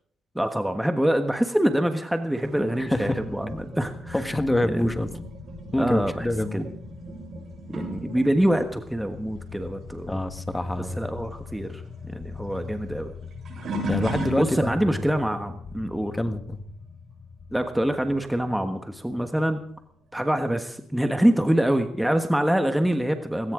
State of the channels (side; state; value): both; normal; correlation 0.95